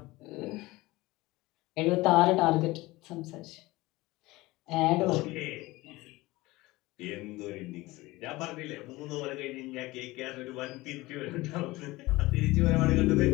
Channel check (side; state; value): right; quieter; 20.1 dB